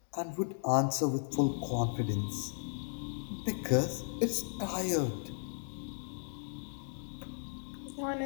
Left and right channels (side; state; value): right; silent; digital silence